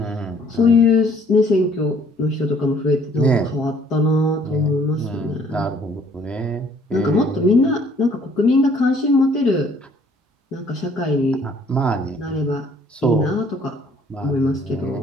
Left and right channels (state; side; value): normal; both; correlation 0.60